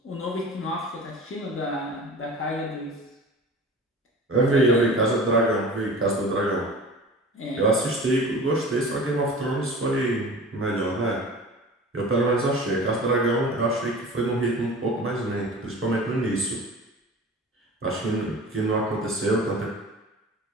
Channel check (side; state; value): both; normal; correlation 0.38